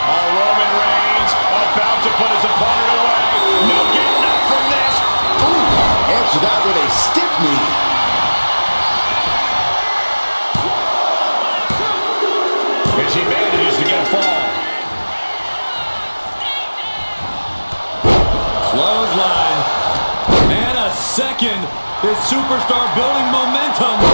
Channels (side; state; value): both; inverted; correlation -1.00